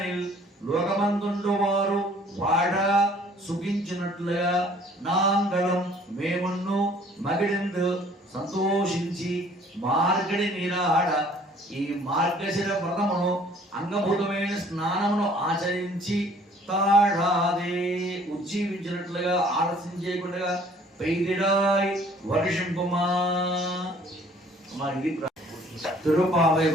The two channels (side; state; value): both; normal; correlation 0.56